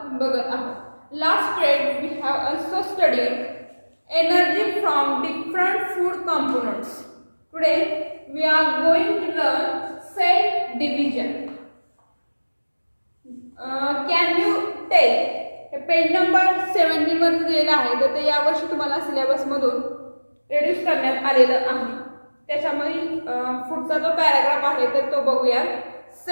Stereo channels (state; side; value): inverted; both; correlation -1.00